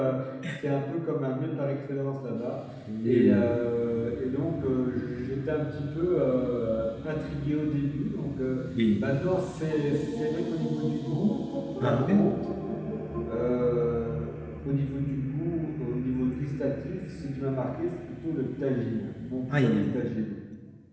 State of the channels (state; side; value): identical; both; correlation 1.00